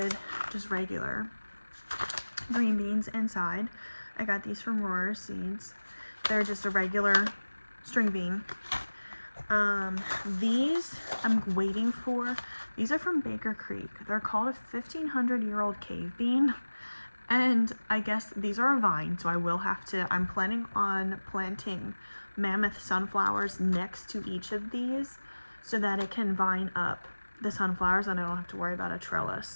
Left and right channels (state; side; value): inverted; both; correlation -1.00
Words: just regular green beans inside. I got these from Rohrers seeds. They're just a regular string bean. These I'm waiting for. These are from Baker Creek. They're called a 1,500-year-old cave bean, and I guess these are a vine, so I will have to, I'm planning on planting mammoth sunflowers next to each of these so that it can vine up the sunflowers and I don't have to worry about a